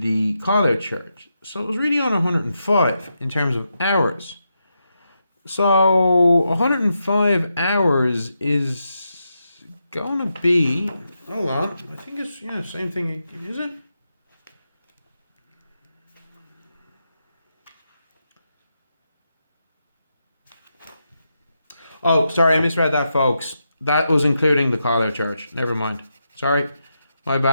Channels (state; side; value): inverted; both; correlation -0.85